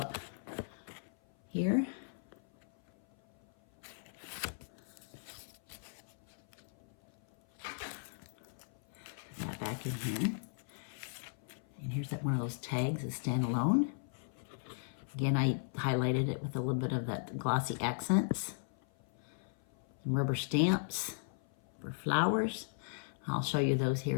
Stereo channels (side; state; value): right; silent; 53 dB below the other